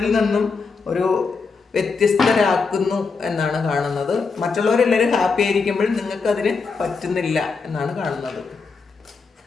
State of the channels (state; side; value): quieter; right; 4.8 dB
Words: നിന്നും ഒരു വ്യത്യസ്തരാക്കുന്നു എന്നാണ് കാണുന്നത്. മറ്റുള്ളവരെല്ലാവരും ഹാപ്പി ആയിരിക്കുമ്പോഴും നിങ്ങൾക്ക് അതിന് പറ്റുന്നില്ല എന്നാണ് കാണുന്നത്.